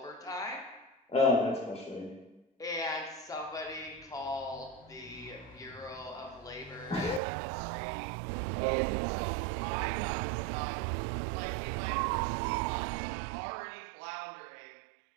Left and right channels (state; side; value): drops out; left; at 7.2 s